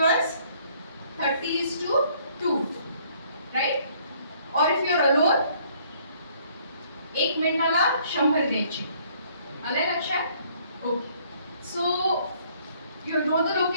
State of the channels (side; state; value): both; inverted; correlation -0.62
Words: 30:2. Right? Or if you are alone, 1 मिनिटाला 100 द्यायचे. आलंय लक्षात? Okay. So you know the